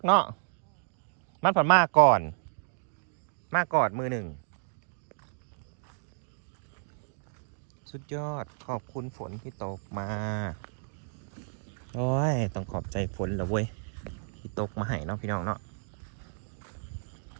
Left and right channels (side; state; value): left; silent; digital silence